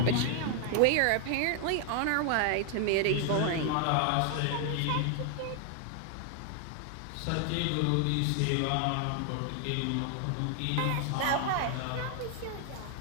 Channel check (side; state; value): both; different; correlation 0.00